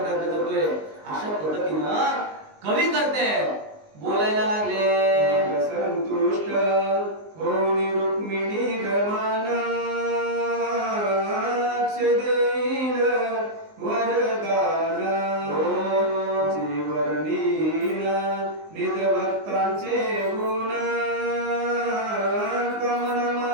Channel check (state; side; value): late; left; 19 ms